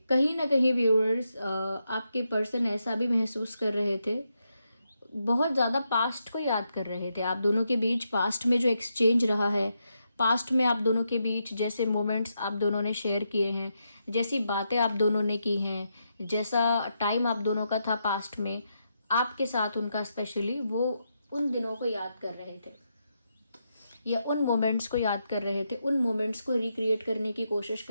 कहीं ना कहीं व्यूअर्स आपके पर्सन ऐसा भी महसूस कर रहे थे, बहुत ज़्यादा पास्ट को याद कर रहे थे। आप दोनों के बीच पास्ट में जो एक्सचेंज रहा है, पास्ट में आप दोनों के बीच जैसे मोमेंट्स आप दोनों ने शेयर किए हैं, जैसी बातें आप दोनों ने की हैं, जैसा टाइम आप दोनों का था पास्ट में आपके साथ उनका, स्पेशली वो उन दिनों को याद कर रहे थे या उन मोमेंट्स को याद कर रहे थे, उन मोमेंट्स को रिक्रिएट करने की कोशिश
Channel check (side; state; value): both; inverted; correlation -0.83